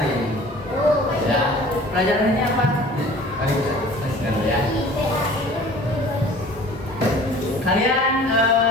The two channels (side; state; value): both; normal; correlation 0.47